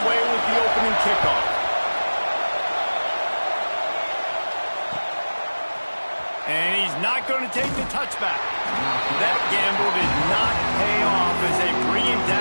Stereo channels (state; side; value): inverted; both; correlation -1.00